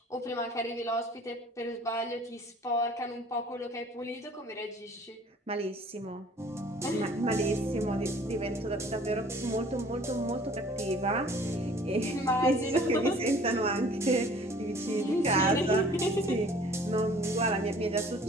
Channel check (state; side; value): normal; both; correlation 0.52